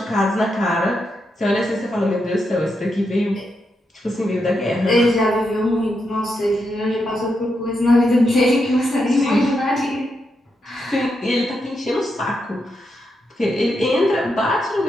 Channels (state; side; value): normal; both; correlation 0.84